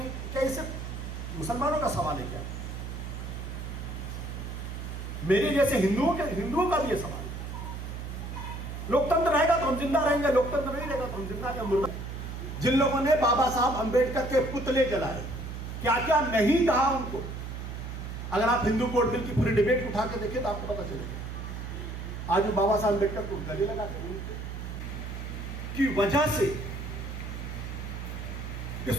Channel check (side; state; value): right; noise; hum, 7 dB below the sound